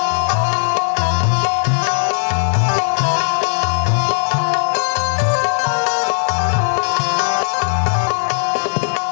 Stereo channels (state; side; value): silent; right; digital silence